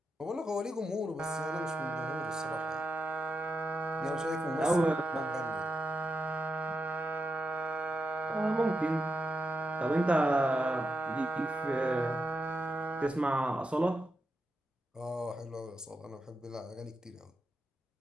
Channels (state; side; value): normal; both; correlation 0.86